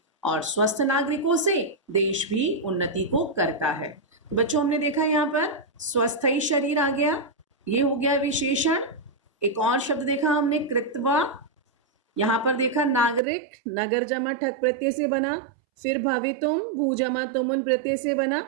और स्वस्थ नागरिकों से देश भी उन्नति को करता है। तो बच्चों हमने देखा यहाँ पर स्वस्थ ही शरीर आ गया, ये हो गया विशेषण। एक और शब्द देखा हमने कृत्वा, यहाँ पर देखा नागरिक, नगर जमा ठक प्रत्यय से बना, फिर भवितुम भू जमा तुमुन प्रत्यय से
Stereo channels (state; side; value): drops out; left; at 13.2 s